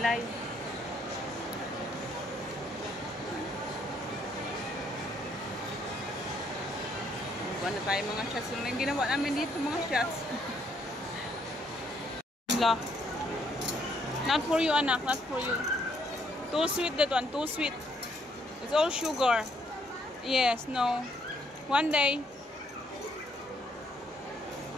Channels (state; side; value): normal; both; correlation 0.70